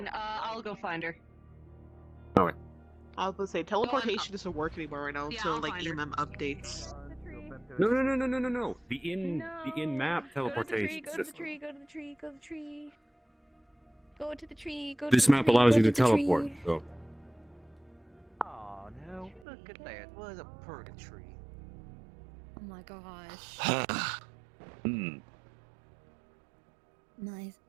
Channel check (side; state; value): left; drops out; at 19.5 s